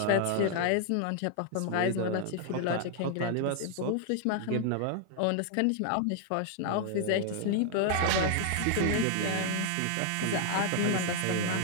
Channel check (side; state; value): both; different; correlation 0.00